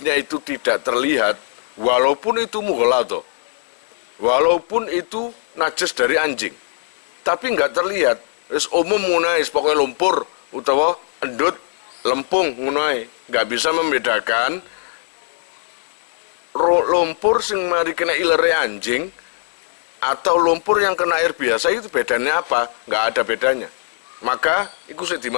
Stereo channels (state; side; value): silent; right; 56 dB below the other